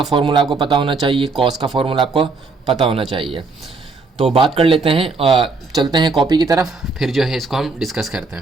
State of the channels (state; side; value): quieter; left; 4.0 dB